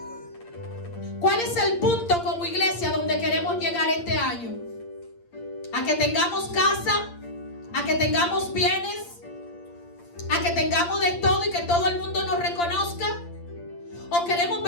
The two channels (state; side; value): late; right; 8.7 ms